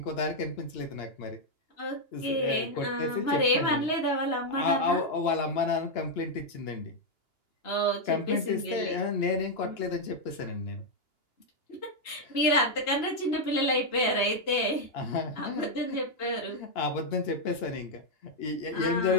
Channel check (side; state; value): right; late; 2.8 ms